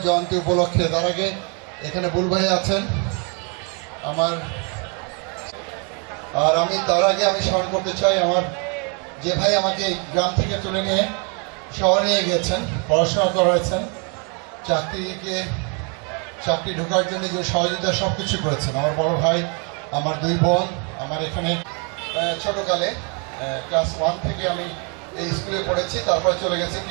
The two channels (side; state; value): left; quieter; 35.8 dB